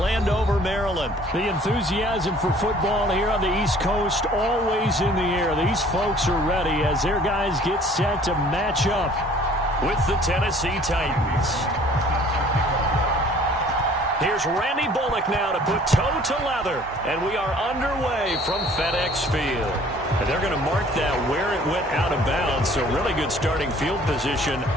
Maryland. The enthusiasm for football here on the East Coast always in the air. These folks are ready as their guys get set to match up with the Tennessee Titans. Here's Randy Bullock now to put toe to leather, and we are underway from FedEx Field. And they're going to mark that where it went out of bounds, so really good starting field position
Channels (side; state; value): both; normal; correlation 0.53